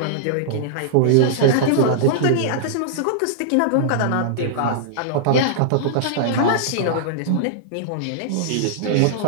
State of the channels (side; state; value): both; different; correlation -0.02